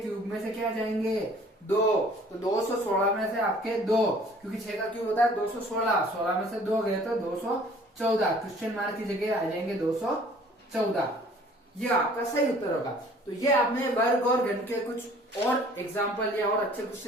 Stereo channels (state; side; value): normal; both; correlation 0.53